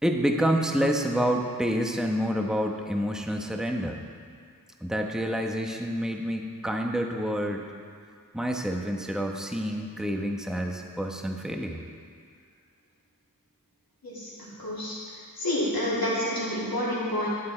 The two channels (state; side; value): normal; both; correlation 0.65